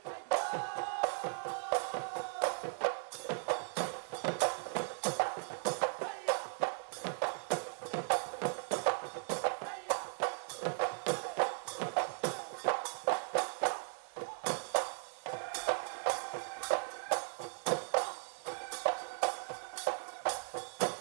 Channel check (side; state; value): left; silent; digital silence